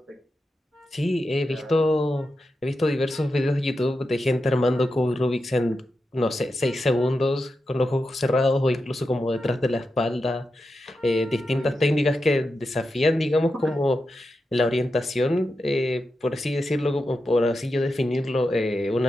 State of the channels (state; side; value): normal; both; correlation 0.89